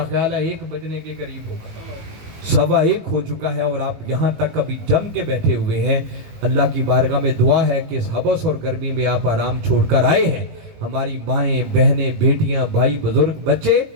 خیال ہے 1 بجنے کے قریب ہوگا، 1:15 ہو چکا ہے اور آپ یہاں تک ابھی جم کے بیٹھے ہوئے ہیں۔ اللہ کی بارگاہ میں دعا ہے کہ اس حبس اور گرمی میں آپ آرام چھوڑ کر آئے ہیں، ہماری مائیں بہنیں بیٹیاں بھائی بزرگ بچے،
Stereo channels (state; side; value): late; left; 19 ms